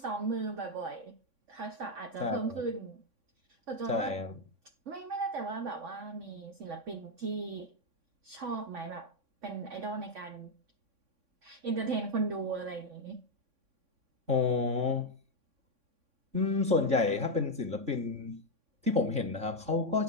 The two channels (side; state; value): left; late; 3.6 ms